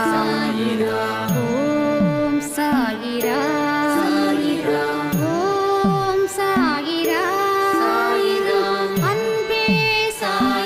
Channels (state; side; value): identical; both; correlation 1.00